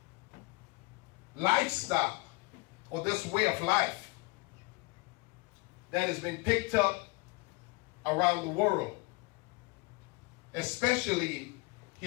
lifestyle or this way of life that has been picked up around the world, especially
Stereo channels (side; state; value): right; quieter; 26.7 dB